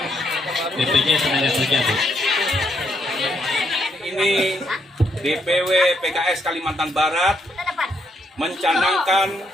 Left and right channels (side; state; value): both; normal; correlation 0.75